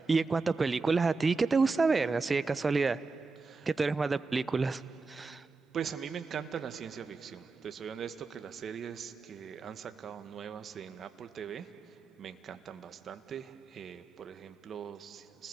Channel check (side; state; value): left; quieter; 4.2 dB